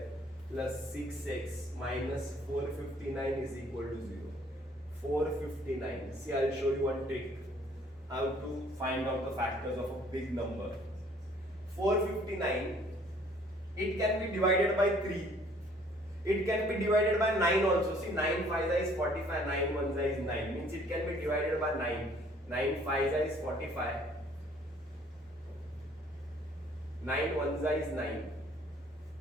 plus 6x minus 459 is equal to 0. 459. See, I will show you one trick. How to find out the factors of a big number. 459, it can be divided by 3. It can be divided by 9 also. See, 9 5 is 45, 9 1 is 9. Means it can be divided by 9. 9 5 is 45. 9 1 is 9.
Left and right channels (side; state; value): both; normal; correlation 0.59